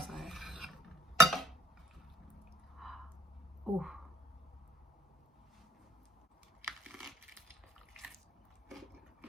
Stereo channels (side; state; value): both; normal; correlation 0.58